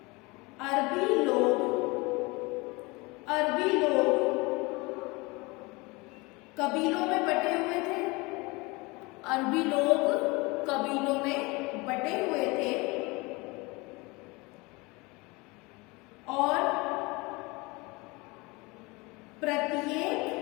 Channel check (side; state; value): right; quieter; 25.1 dB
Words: अरबी लोग कबीलों में बटे हुए थे। अरबी लोग कबीलों में बटे हुए थे और प्रत्येक